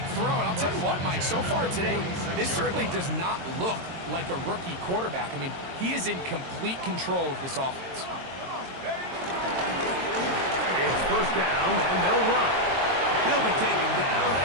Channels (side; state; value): left; late; 22 ms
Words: throw. And I'll tell you what, Mike, so far today, this certainly does not look like a rookie quarterback. I mean, he is in complete control of this offense. It's first down, and they'll run. He'll be taken down